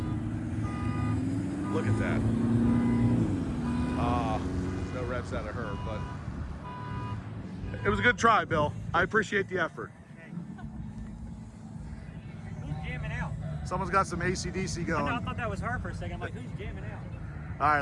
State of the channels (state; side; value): identical; both; correlation 1.00